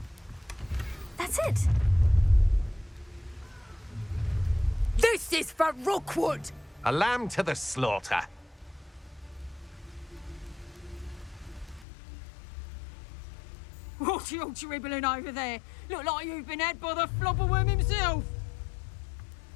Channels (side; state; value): right; drops out; at 11.9 s